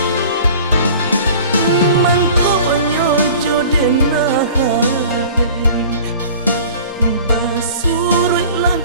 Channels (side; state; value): both; inverted; correlation -0.44